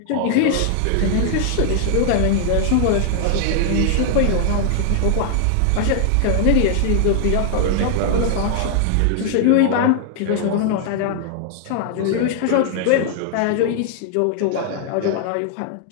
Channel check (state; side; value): different; both; correlation 0.00